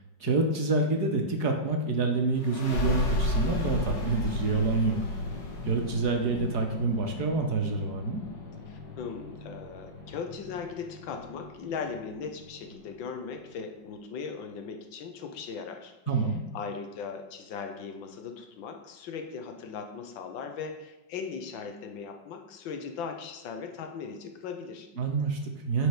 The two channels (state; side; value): late; right; 5.4 ms